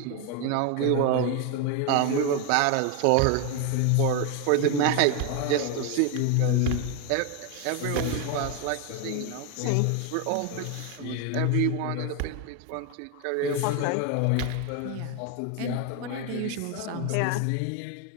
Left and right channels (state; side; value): different; both; correlation 0.01